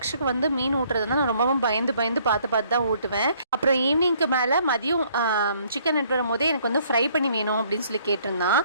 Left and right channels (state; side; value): inverted; both; correlation -0.63